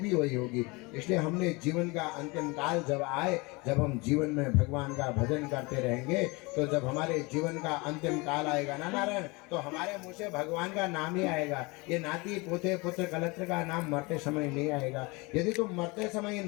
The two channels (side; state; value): right; quieter; 26.1 dB